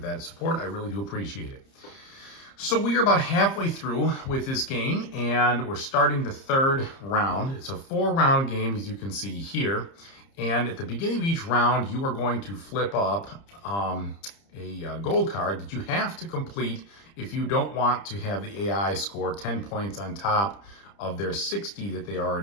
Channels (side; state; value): right; late; 30 ms